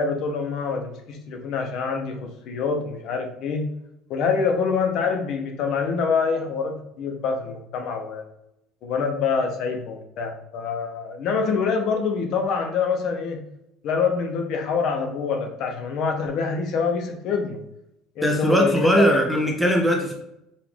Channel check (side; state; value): right; quieter; 3.2 dB